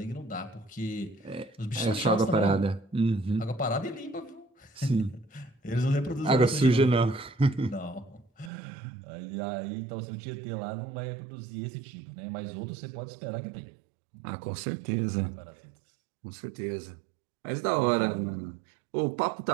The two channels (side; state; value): left; drops out; at 8.5 s